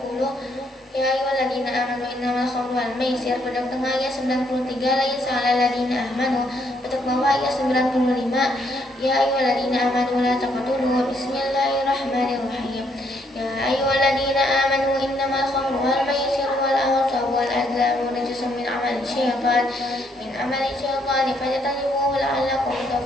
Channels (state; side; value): normal; both; correlation 0.71